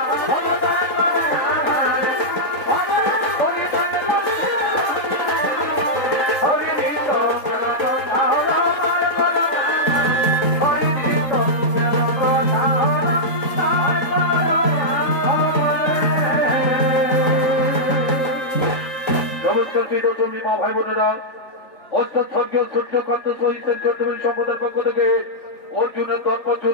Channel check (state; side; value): late; right; 3.8 ms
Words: মা ভাই বোনেরা, স্বর্গীয় সূর্যকান্ত সহিতের চৌধুরী সম্প্রদায়ের পক্ষ থেকে অর্জুনের দর্প